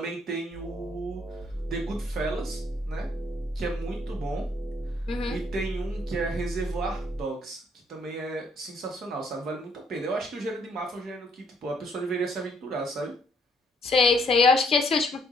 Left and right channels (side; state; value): both; normal; correlation 0.68